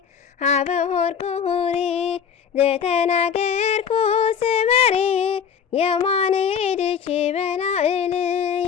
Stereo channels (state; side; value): quieter; right; 7.4 dB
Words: ሀበሆርኩ ሁሪ ዘተናገርኩ ስመሪ የማኔ እድቺ